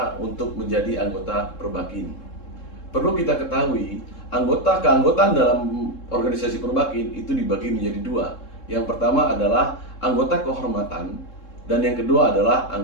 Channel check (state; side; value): late; right; 3.7 ms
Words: untuk menjadi anggota Perbakin. Perlu kita ketahui, keanggotaan dalam organisasi Perbakin itu dibagi menjadi dua. Yang pertama adalah anggota kehormatan dan yang kedua adalah